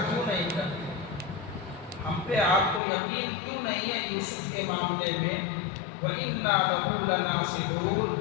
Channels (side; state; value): right; drops out; at 2.8 s